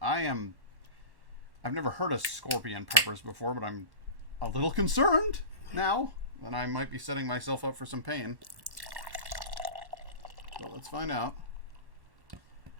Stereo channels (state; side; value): late; left; 1.1 ms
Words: I've never heard of scorpion peppers before, but I'm a little concerned now. Then I might be setting myself up for some pain. So let's find out.